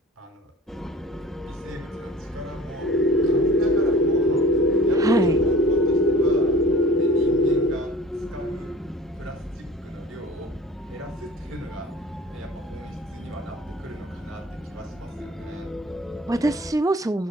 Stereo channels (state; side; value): normal; both; correlation 0.45